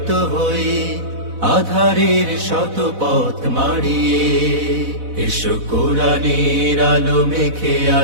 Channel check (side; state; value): left; late; 4.0 ms